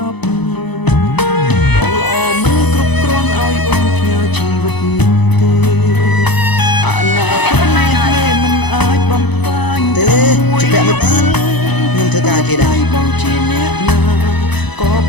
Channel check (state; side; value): late; right; 0.99 ms